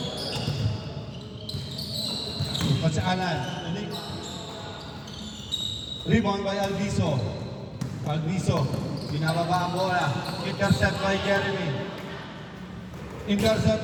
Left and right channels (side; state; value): both; identical; correlation 1.00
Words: Coach Alan. Rebound by Alviso. Alviso. Binababa ang bola. Intercept by Jeremy. Intercept